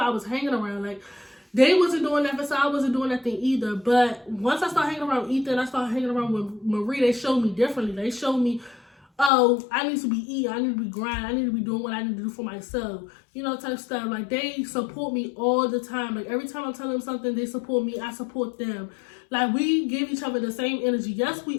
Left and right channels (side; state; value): right; drops out; at 9.3 s